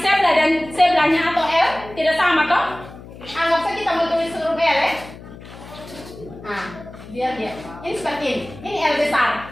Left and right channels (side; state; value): left; noise; hum, 17 dB below the sound